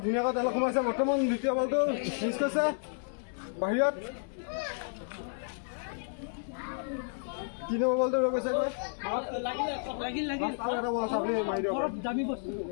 ধুনীয়াকৈ তেলত সোমাইছে বৰ্তমান দ্বিতীয় বলটো মিছ কৰিছে বাহিৰত 3 নম্বৰ বলটো ৰৈ গৈছে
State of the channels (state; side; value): silent; right; digital silence